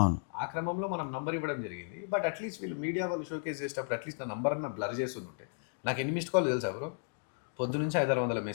ఆ క్రమంలో మనం నంబర్ ఇవ్వడం జరిగింది. బట్ అట్లీస్ట్ వీళ్ళు మీడియా వాళ్ళు షోకేస్ చేసేటప్పుడు అట్లీస్ట్ నా నంబర్ అన్న బ్లర్ చేసి ఉంటే. నాకు ఎన్ని మిస్డ్ కాల్ తెలుసా బ్రో? పొద్దు నుంచి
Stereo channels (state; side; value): silent; right; 55 dB below the other